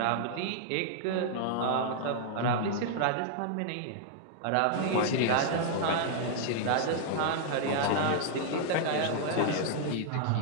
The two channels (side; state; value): both; different; correlation -0.01